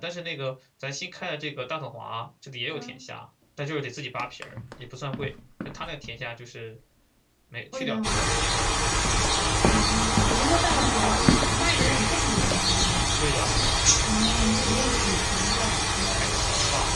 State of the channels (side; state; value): both; identical; correlation 1.00